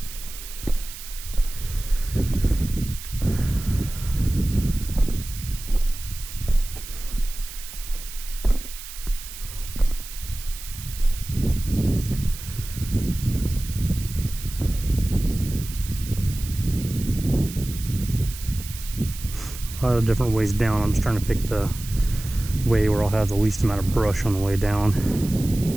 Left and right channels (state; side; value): noise; right; hiss, 12 dB below the sound